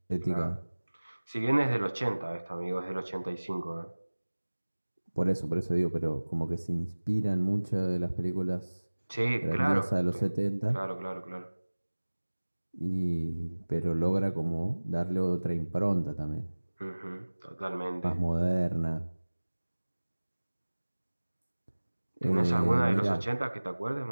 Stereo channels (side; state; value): both; inverted; correlation -1.00